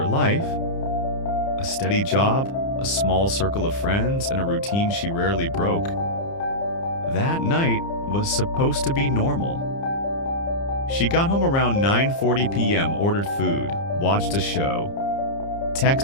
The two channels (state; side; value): late; right; 30 ms